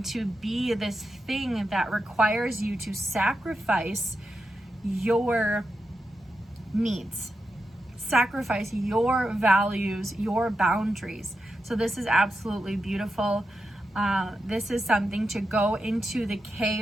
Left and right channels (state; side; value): normal; both; correlation 0.88